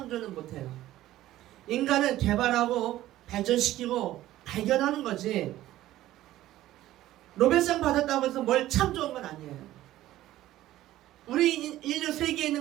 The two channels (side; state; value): left; quieter; 14.6 dB